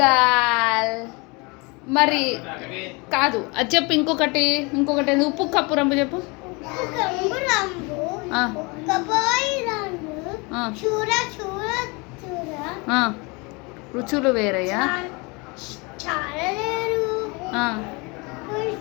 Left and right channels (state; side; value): quieter; right; 28.2 dB